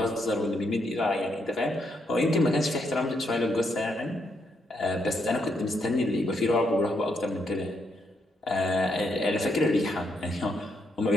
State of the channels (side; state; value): both; normal; correlation 0.77